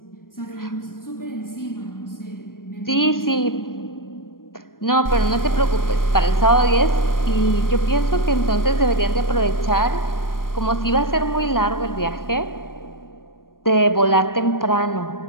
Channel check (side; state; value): right; late; 0.91 ms